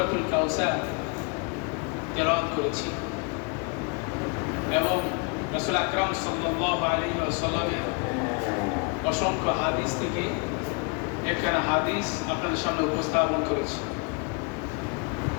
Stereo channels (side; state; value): right; quieter; 33.1 dB